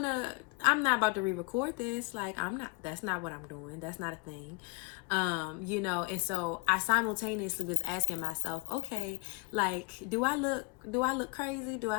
not about to re-record this. Like, that's not what I'm doing. That's not a thing. And so I simultaneously was asking myself, okay, like, do I look crazy? Do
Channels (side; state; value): right; quieter; 29.4 dB